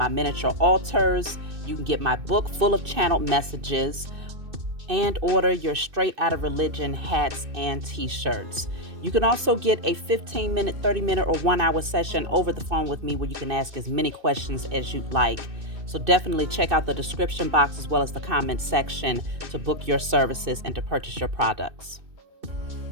miniature altars. You can get my book full of channeled messages, and order your Straight Outta Religion hats and t-shirts. You can also get a 15-minute, 30-minute, or 1-hour session over the phone with me where you can ask as many questions as you'd like. So definitely check out the description box as well as the comment section to book your services and to purchase your products.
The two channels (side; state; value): left; late; 2.6 ms